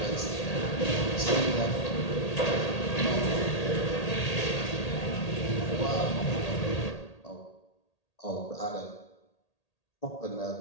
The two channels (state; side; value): late; right; 1.8 ms